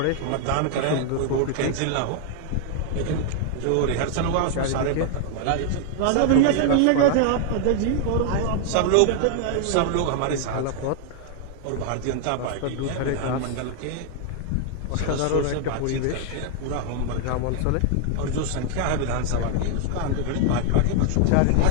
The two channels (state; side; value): different; both; correlation 0.00